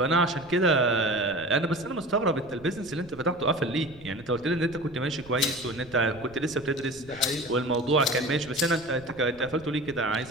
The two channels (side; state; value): right; noise; rumble, 22 dB below the sound